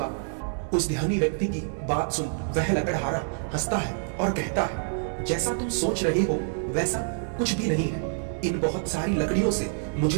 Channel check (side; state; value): left; silent; digital silence